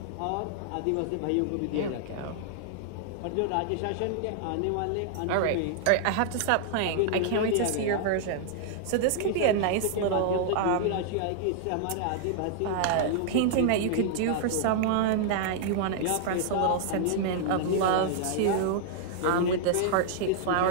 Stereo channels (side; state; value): both; different; correlation -0.01